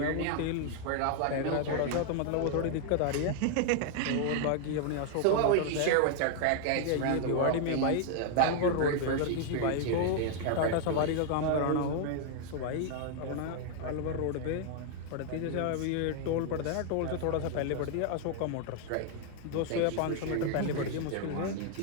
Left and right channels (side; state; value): both; different; correlation 0.00